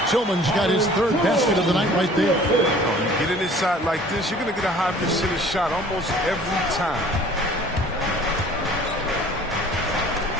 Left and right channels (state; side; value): normal; both; correlation 0.50